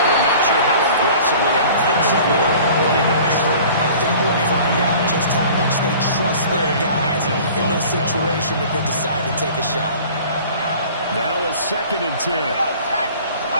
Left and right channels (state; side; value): inverted; both; correlation -0.46